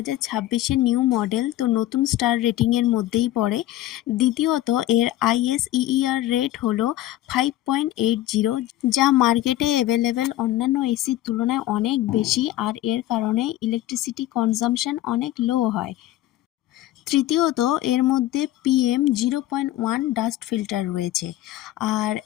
নিউ মডেল, তো নতুন স্টার রেটিংয়ের মধ্যেই পড়ে। দ্বিতীয়ত, এর ISEER রেট হলো 5.80, যা মার্কেটে অ্যাভেলেবেল অন্যান্য এসির তুলনায় অনেক বেশি, আর এর কারণে ইলেকট্রিসিটি কনজাম্পশন অনেক লো হয়। তৃতীয়ত, এর মধ্যে PM0.1 ডাস্ট ফিল্টার রয়েছে। আর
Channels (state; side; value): quieter; right; 14.5 dB